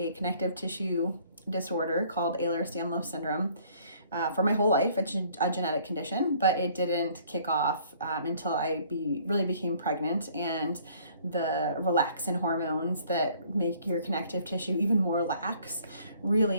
connective tissue disorder called Ehlers-Danlos syndrome for my whole life. It's a genetic condition, but it didn't kick off until I really became pregnant, and the relaxin hormones that make your connective tissue even more lax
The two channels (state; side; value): inverted; both; correlation -0.58